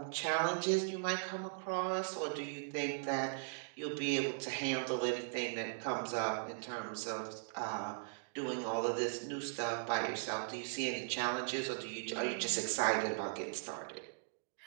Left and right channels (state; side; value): silent; left; digital silence